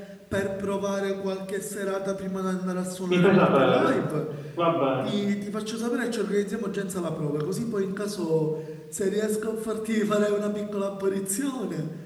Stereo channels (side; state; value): both; identical; correlation 1.00